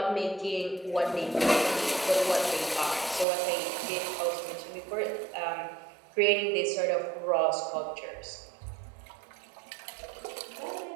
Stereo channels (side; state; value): left; drops out; at 3.2 s